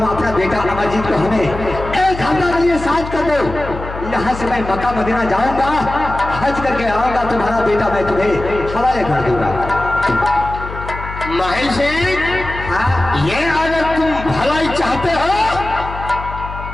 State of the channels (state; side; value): noise; left; hum, 10 dB below the sound